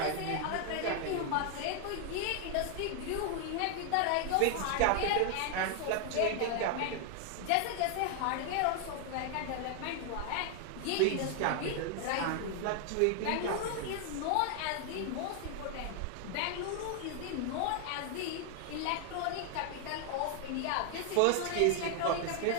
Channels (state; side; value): different; both; correlation 0.00